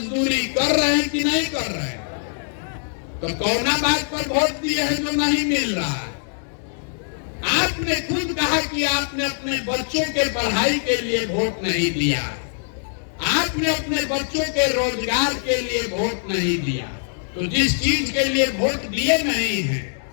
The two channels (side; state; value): right; silent; digital silence